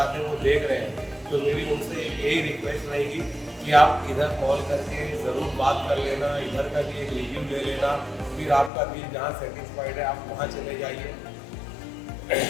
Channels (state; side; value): drops out; right; at 8.7 s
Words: हैं वो देख रहे हैं, तो मेरी उनसे यही रिक्वेस्ट रहेगी कि आप इधर कॉल करके ज़रूर बात कर लेना, इधर का भी एक रिव्यू ले लेना, फिर आपका दिल जहाँ सेटिस्फाइड है आप वहाँ चले जाइए।